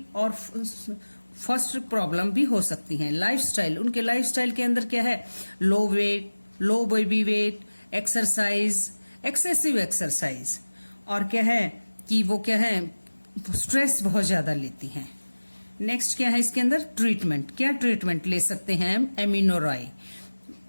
और फर्स्ट प्रॉब्लम भी हो सकती हैं। लाइफस्टाइल, उनके लाइफस्टाइल के अंदर क्या है? Low weight, low baby weight, exercise, excessive exercise, और क्या है कि वो क्या है, स्ट्रेस बहुत ज्यादा लेती हैं। नेक्स्ट क्या है इसके अंदर? ट्रीटमेंट। क्या ट्रीटमेंट ले सकते हैं हम? एमिनोरॉय,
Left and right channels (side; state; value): both; inverted; correlation -1.00